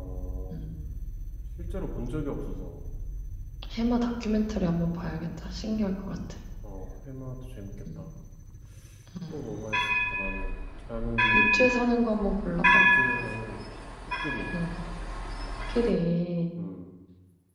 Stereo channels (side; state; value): both; identical; correlation 1.00